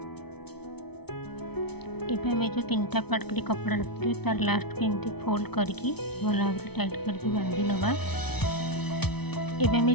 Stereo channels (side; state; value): right; late; 0.98 ms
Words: एबे आमे जो 3टा पार्ट करी कपड़ा रखिथिबे तार लास्ट को एमती फोल्ड करके भल भाव टाइट करके बांधी नबा। एबे आमे